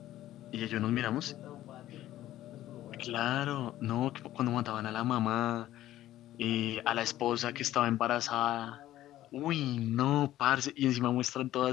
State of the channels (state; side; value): quieter; right; 13.9 dB